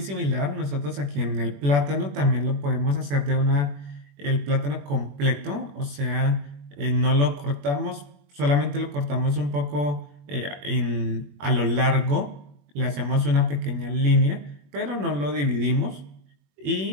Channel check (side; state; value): left; late; 21 ms